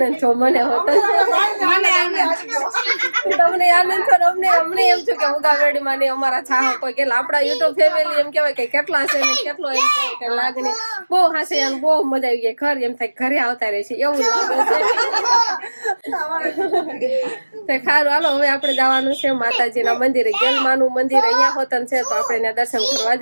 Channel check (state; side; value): inverted; both; correlation -1.00